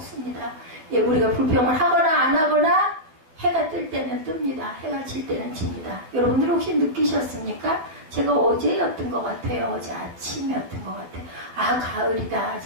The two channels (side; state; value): left; late; 12 ms